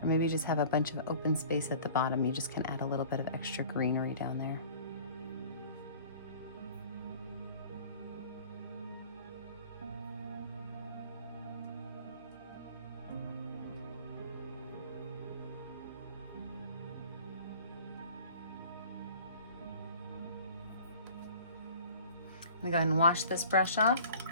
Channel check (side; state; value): both; inverted; correlation -0.47